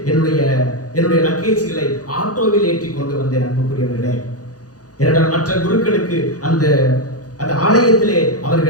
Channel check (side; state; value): right; late; 0.67 ms